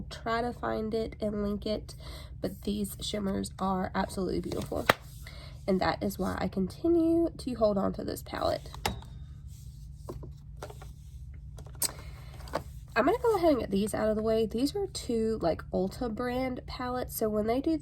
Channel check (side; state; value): both; identical; correlation 1.00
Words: try to find it and link it, but these shimmers are absolutely beautiful. And that is why I continue to hold on to this palette. I'm gonna go ahead and get these out of the way. These are two like Ulta brand palettes. So when they do